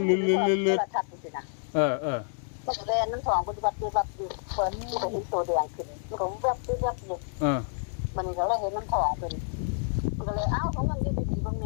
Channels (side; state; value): right; silent; digital silence